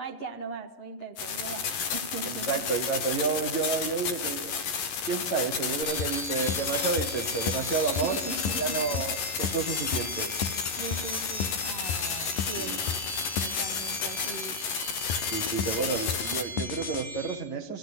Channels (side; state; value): right; late; 11 ms